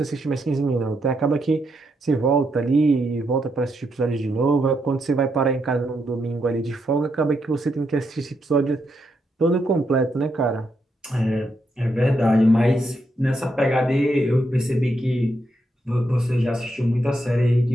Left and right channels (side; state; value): both; normal; correlation 0.80